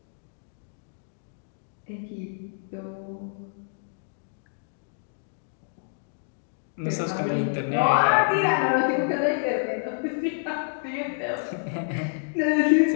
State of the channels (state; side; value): silent; right; digital silence